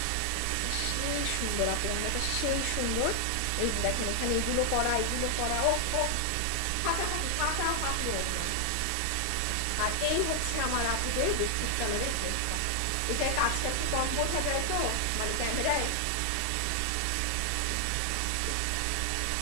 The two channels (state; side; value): different; both; correlation 0.00